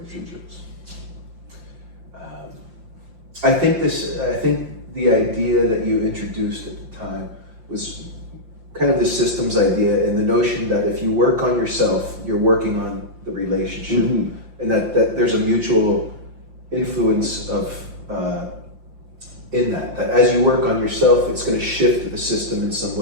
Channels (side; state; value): left; late; 5.7 ms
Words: I think the idea that you introduced at the time was kind of the systems idea, and the notion that if you work on yourself, you're working on the relationship, and that there's a mutual influence of in that as you work on yourself, it's going to shift the system in some